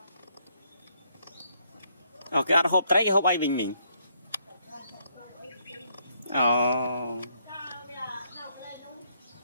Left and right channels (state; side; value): inverted; both; correlation -0.71